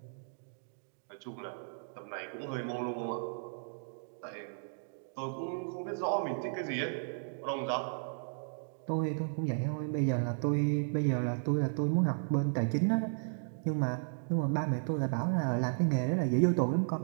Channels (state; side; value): silent; left; digital silence